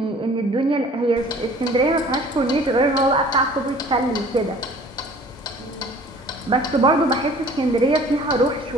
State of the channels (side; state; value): both; normal; correlation 0.50